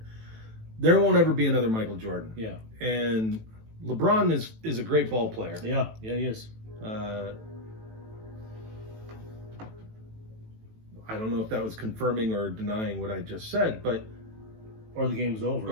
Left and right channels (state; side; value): late; left; 18 ms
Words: There won't ever be another Michael Jordan. Yeah. And LeBron is a great ball player. Yeah, he is. I don't know if that was confirming or denying what I just said, but or the game's over.